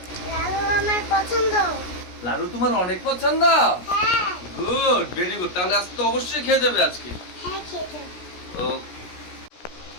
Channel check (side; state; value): right; late; 17 ms